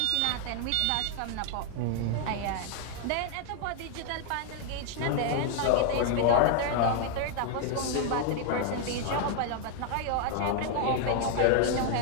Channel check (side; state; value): both; different; correlation 0.00